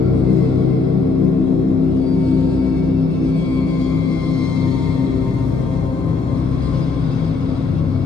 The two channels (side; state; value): right; quieter; 4.4 dB